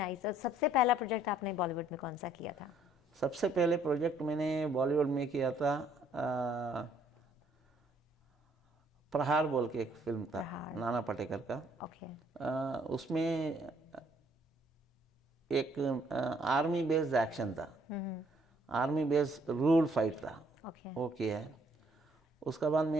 और सबसे पहला प्रोजेक्ट आपने बॉलीवुड में कौन सा किया था? सबसे पहले प्रोजेक्ट मैंने बॉलीवुड में किया था, प्रहार बोल के एक फिल्म था, नाना पाटेकर का। ओके। उसमें एक आर्मी बेस्ड एक्शन था, आर्मी बेस्ड रूल फाइट था। ओके। वो किया है। उसके बाद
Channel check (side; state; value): both; normal; correlation 0.64